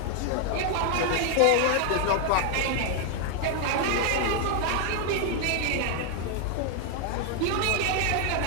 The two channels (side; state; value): both; different; correlation 0.00